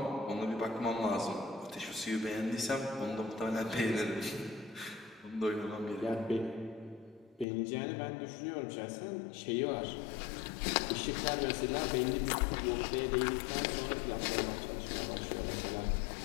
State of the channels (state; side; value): drops out; right; at 7.5 s